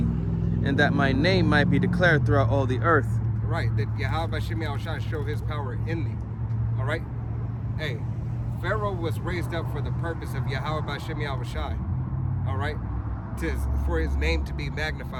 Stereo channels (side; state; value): both; identical; correlation 1.00